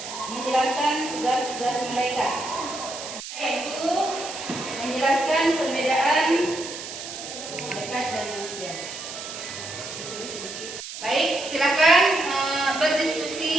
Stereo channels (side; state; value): right; noise; hiss, 10 dB below the sound